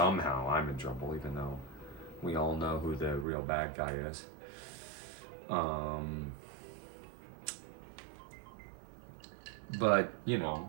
I'm in trouble, even though we all know who the real bad guy is. But, you know,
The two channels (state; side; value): drops out; left; at 3.2 s